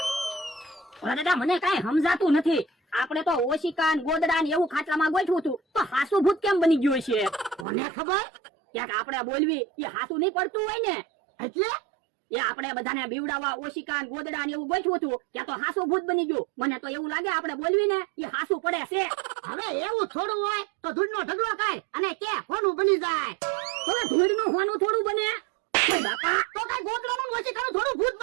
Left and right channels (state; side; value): drops out; left; at 7.7 s